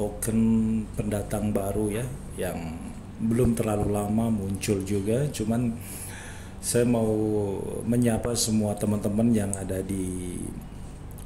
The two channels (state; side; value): identical; both; correlation 1.00